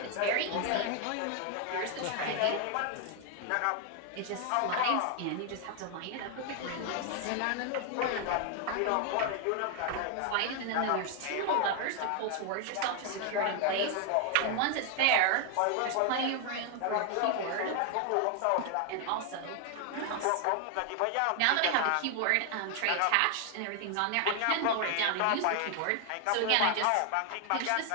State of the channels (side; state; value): both; different; correlation 0.00